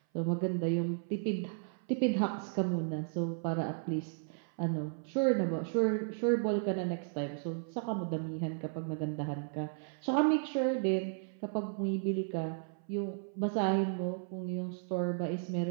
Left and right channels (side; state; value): left; silent; 55 dB below the other